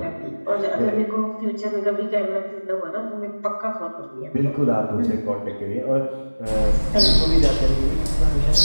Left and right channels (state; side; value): inverted; both; correlation -1.00